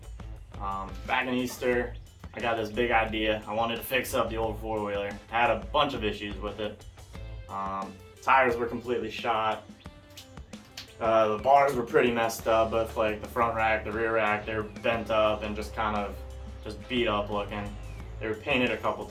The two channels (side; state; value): both; identical; correlation 1.00